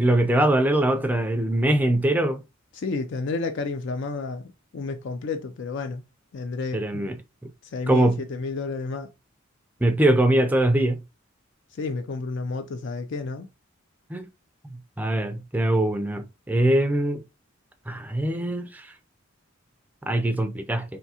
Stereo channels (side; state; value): both; normal; correlation 0.78